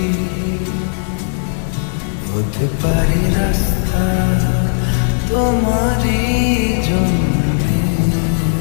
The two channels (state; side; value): silent; right; digital silence